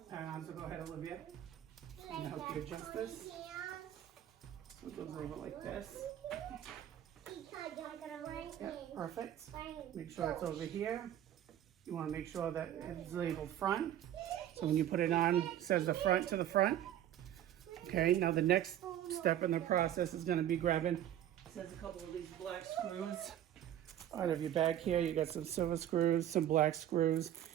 pad on. So go ahead, Olivia. I'm gonna help you adjust this. So it goes over like this. Yeah, perfect. Make sure it's over here. You want to make sure that it's labeled front. So when you put it on, it says the front to the front. Okay, now the next step in the process is going to be grabbing, it says a couple of these black screws out of your bag here. You got some silver screws, some black screws,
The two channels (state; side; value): quieter; left; 11.5 dB